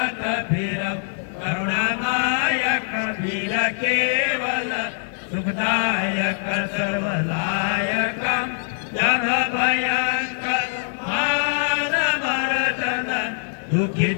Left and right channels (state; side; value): silent; right; digital silence